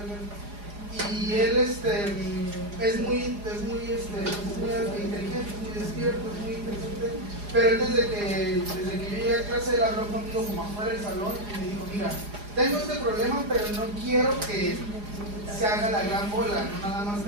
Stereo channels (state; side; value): late; left; 4.9 ms